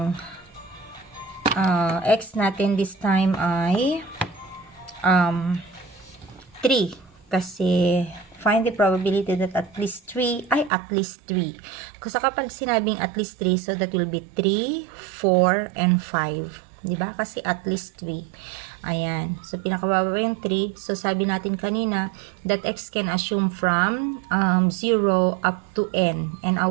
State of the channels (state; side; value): drops out; left; at 10.7 s